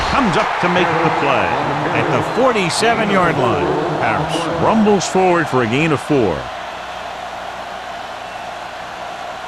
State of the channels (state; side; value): identical; both; correlation 1.00